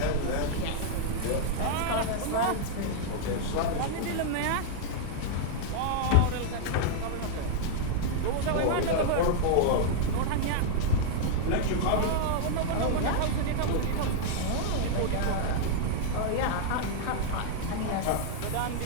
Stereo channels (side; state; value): both; different; correlation -0.01